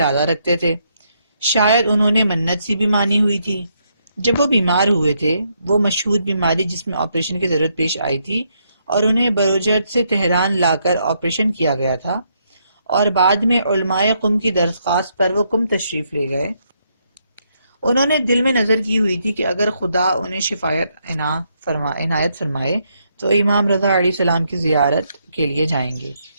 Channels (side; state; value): both; inverted; correlation -0.76